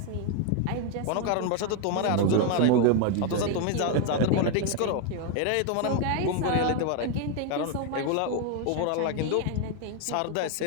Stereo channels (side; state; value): both; different; correlation 0.01